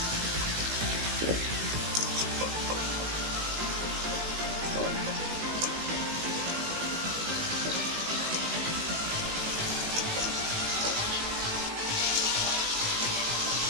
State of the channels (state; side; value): late; left; 18 ms